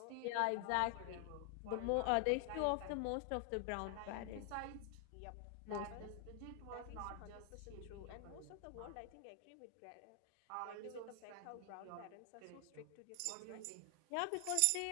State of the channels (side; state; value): both; different; correlation 0.00